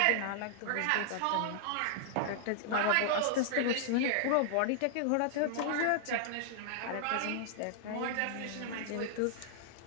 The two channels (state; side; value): different; both; correlation -0.01